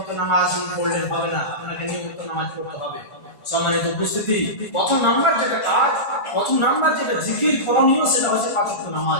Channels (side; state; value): right; late; 1.4 ms